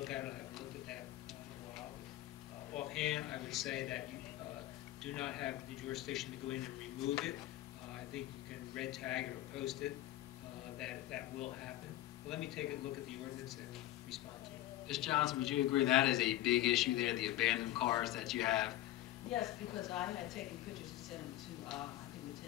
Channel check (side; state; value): right; quieter; 15.1 dB